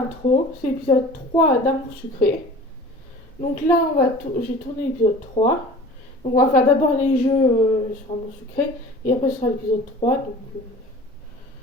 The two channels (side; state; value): both; normal; correlation 0.42